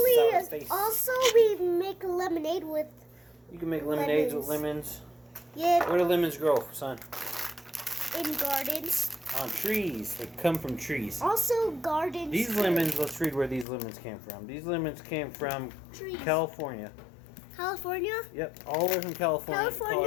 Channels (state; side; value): drops out; right; at 13.7 s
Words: sour face. we make lemonade with. You can make lemonades with lemons. lemons. Yeah, Where do lemons grow, son? in gardens. On trees. They come from trees. Also, gardens. These too. lemons, let's read where these lemons came from. These lemons came from Trees. California. California. Yep, all the way from California,